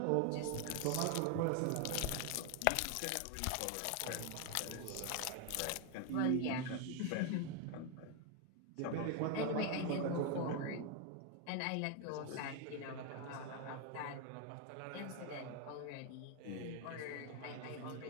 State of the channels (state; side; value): different; both; correlation 0.01